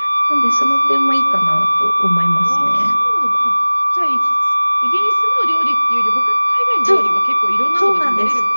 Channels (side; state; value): both; inverted; correlation -1.00